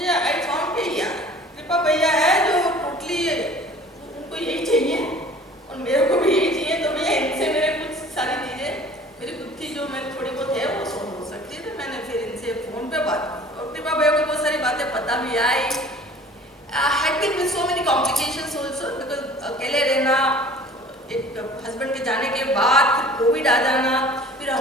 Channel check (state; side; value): normal; both; correlation 0.47